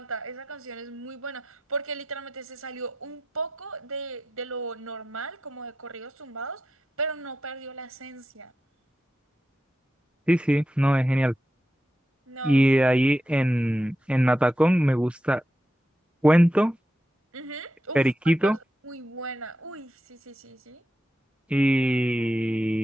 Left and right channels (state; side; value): normal; both; correlation 0.88